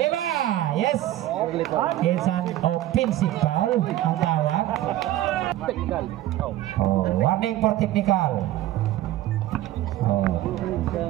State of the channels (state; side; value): quieter; left; 14.3 dB